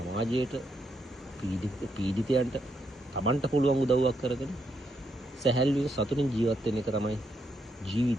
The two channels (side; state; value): both; normal; correlation 0.78